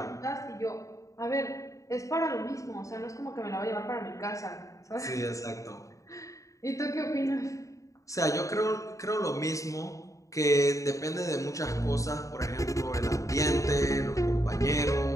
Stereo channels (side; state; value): right; late; 0.16 ms